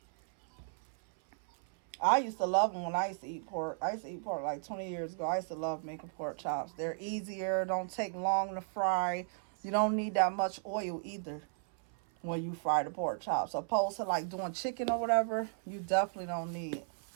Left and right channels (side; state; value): left; silent; 54 dB below the other